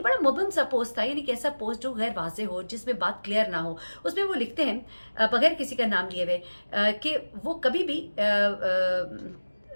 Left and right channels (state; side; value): inverted; both; correlation -1.00